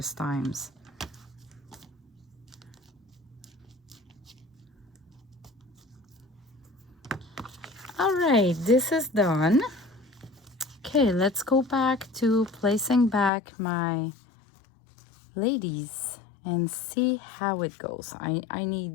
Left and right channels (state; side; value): drops out; right; at 13.3 s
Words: times. All right, this is done. Okay, let's go back to placing back my ladies and see how it goes. I